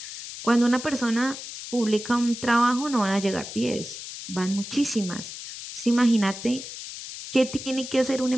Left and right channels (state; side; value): noise; left; hiss, 10 dB below the sound